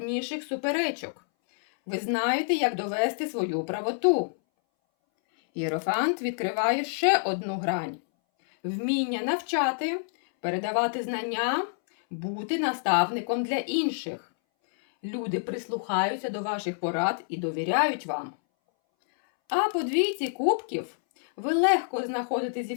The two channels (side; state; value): right; silent; 60 dB below the other